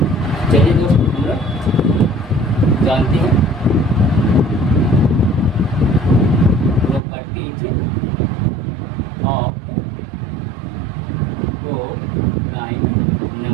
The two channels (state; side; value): drops out; left; at 7.0 s